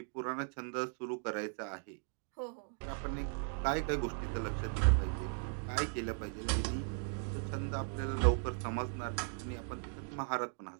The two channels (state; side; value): silent; left; 53 dB below the other